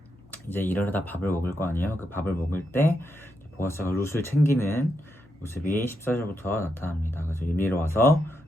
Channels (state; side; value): normal; both; correlation 0.83